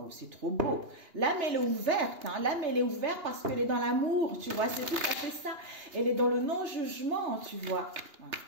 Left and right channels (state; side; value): late; left; 2.9 ms